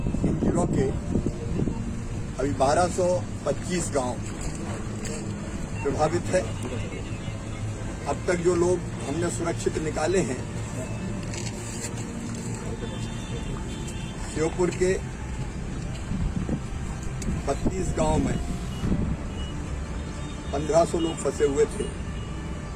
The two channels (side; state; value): both; identical; correlation 1.00